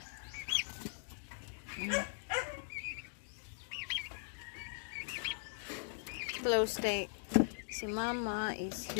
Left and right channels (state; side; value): silent; right; digital silence